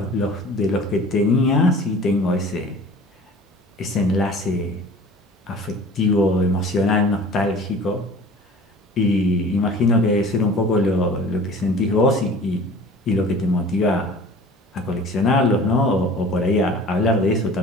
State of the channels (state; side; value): normal; both; correlation 0.44